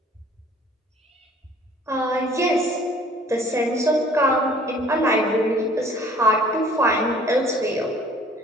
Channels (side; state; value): both; normal; correlation 0.54